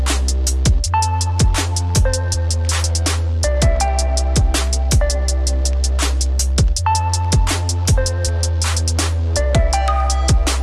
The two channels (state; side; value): identical; both; correlation 1.00